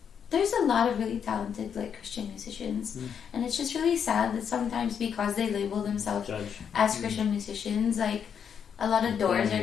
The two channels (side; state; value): right; quieter; 7.6 dB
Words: There's a lot of really talented like Christian musicians, and it's just really sad that sometimes because they label themselves as Christian musicians, like a lot of doors